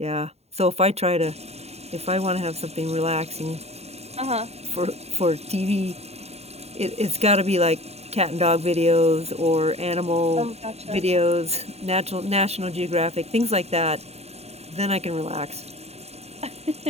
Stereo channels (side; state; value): left; late; 0.30 ms